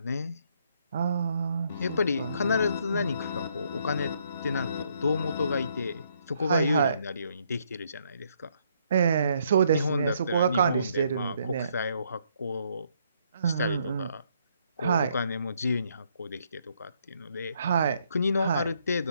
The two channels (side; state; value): both; inverted; correlation -0.70